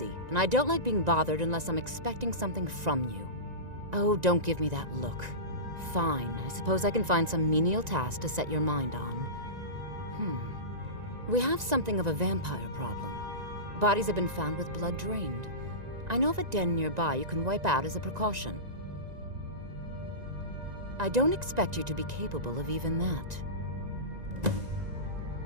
and I don't like being bothered unless I'm expecting something from you. Oh, don't give me that look. Fine, I suppose I can find some menial task to set your mind on. We have something of a vampire problem. Bodies have been found with blood drained. I know of a den nearby you can wipe out as a precaution. I don't expect you to be capable of even that.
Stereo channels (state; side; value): late; left; 1.9 ms